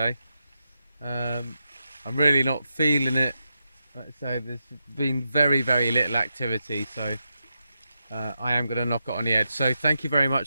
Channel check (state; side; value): inverted; both; correlation -0.86